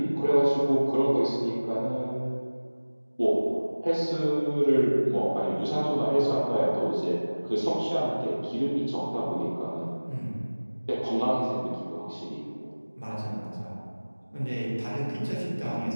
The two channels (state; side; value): inverted; both; correlation -1.00